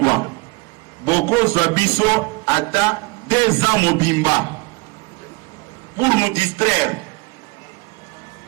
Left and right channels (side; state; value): left; quieter; 26.4 dB